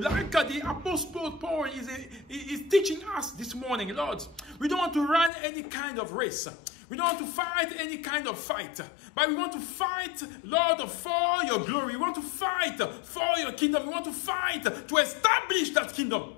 Like the Apostle Paul is teaching us this morning, Lord. We don't want to run any kind of race. We don't want to fight any kind of fight. But we want to fight, Lord, for your glory. We want to fight for your kingdom. We want to fight to establish that kingdom.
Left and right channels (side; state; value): right; drops out; at 5.3 s